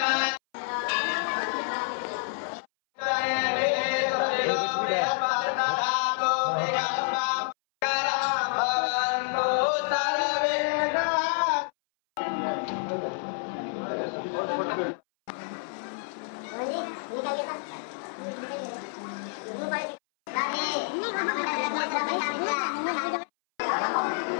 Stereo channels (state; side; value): silent; right; 59 dB below the other